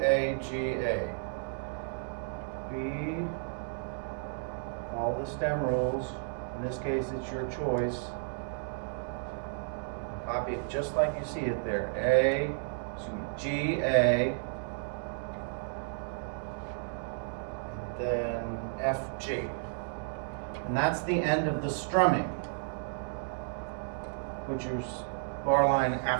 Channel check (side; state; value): left; silent; digital silence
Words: G, A. B, follow the stem rules. In this case, it's your choice. You copy it just like you see it there. A, G, A, then F, G. And that's the end of the strumming, which is bar line